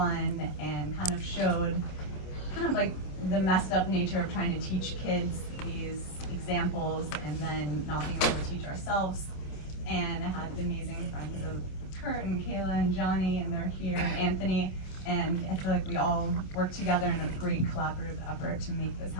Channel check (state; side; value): late; right; 27 ms